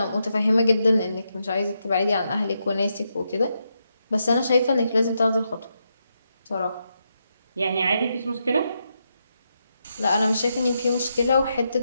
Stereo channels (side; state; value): both; inverted; correlation -0.83